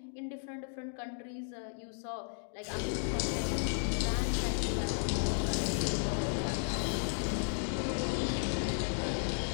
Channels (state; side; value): silent; right; digital silence